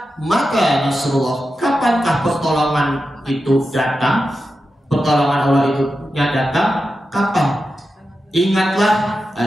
maka Nasrullah, kapankah pertolongan itu datang? Pertolongan Allah itu datang kapan? Ingatlah,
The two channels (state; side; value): normal; both; correlation 0.90